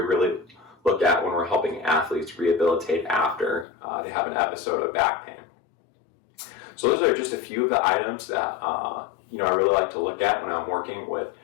really look at when we're helping athletes rehabilitate after they have an episode of back pain. So those are just a few of the items that I really like to look at when I'm working with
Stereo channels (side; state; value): right; drops out; at 3.7 s